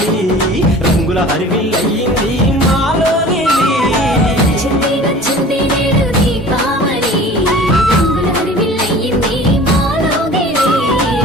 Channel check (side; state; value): both; normal; correlation 0.43